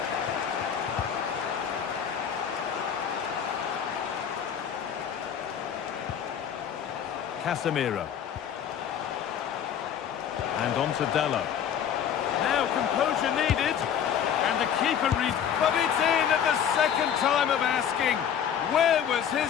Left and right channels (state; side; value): quieter; right; 8.7 dB